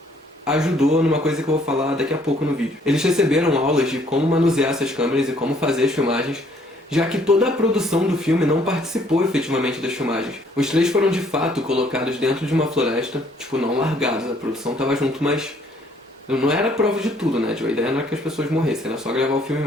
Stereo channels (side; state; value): both; normal; correlation 0.63